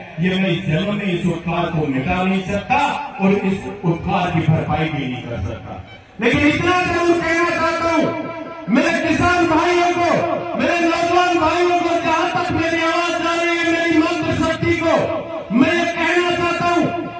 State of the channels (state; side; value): identical; both; correlation 1.00